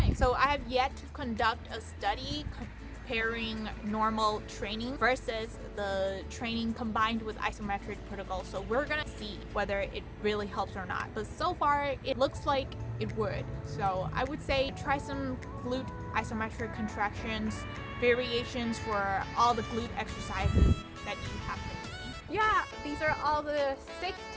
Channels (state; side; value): identical; both; correlation 1.00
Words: So I have yet to conduct a study comparing normal training versus the training combined with isometric protocols. So we're gonna see whether it really helps or not. But so far, it looks like it would. So I would say try some glute isometric contractions, variations for all the glute exercises that you have been doing. Yeah, these are all the 6